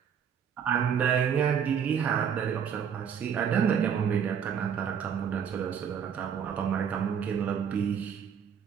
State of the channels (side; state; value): left; quieter; 7.8 dB